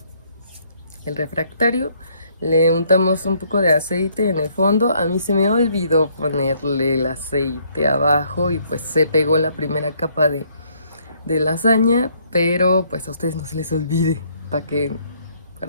el refractario. Le untamos un poco de aceite en el fondo. A mí se me olvidó ponerle el aceite abajo y pues se pegó la primera capa de lasaña, pero pues a ustedes no se les olvide para que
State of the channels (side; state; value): both; inverted; correlation -0.67